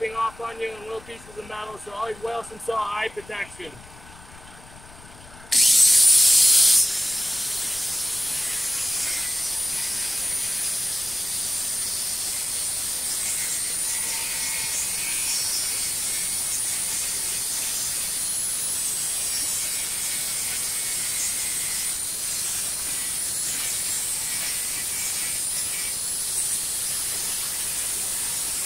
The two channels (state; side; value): noise; left; rumble, 20 dB below the sound